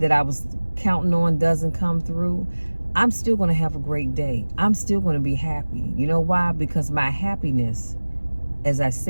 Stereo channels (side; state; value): both; inverted; correlation -1.00